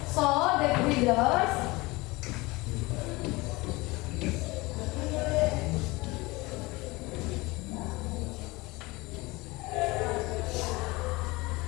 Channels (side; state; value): right; quieter; 22.7 dB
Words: So that readers